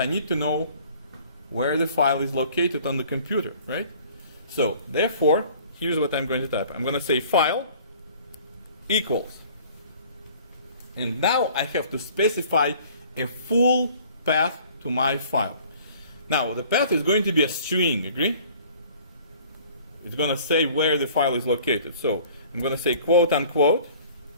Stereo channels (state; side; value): inverted; both; correlation -0.51